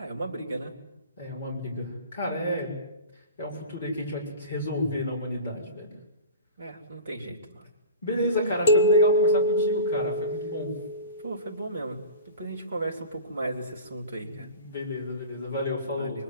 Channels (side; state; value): both; inverted; correlation -0.36